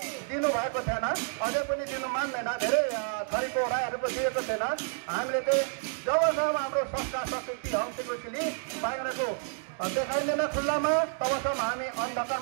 दिनुभएको थिएन, अझै पनि दिनु मान्दैन। धेरै थरीको राईहरूको दिएको थिएन। हामीले चाहिँ जबसम्म हाम्रो संस्कार संस्कृति हम सिक्रेटली बाहिरको देखाइँदैन खुल्लामा तबसम्म हामी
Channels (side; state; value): left; silent; 58 dB below the other